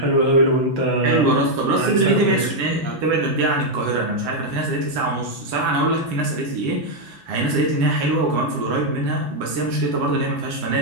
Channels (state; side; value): late; left; 6.0 ms